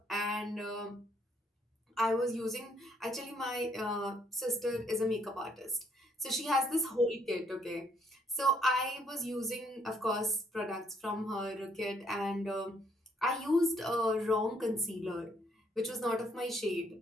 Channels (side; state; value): both; normal; correlation 0.67